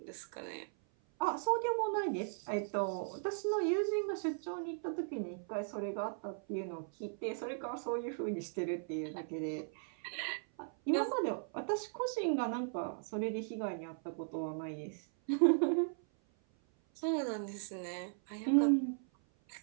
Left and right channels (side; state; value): left; silent; 53 dB below the other